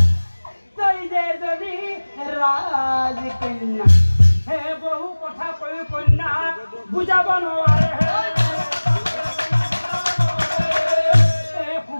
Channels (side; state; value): both; inverted; correlation -1.00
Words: তই যে এজনী ৰাজকন্যা হে বহু কথা কৈ কন্যা বুজাব নোৱাৰে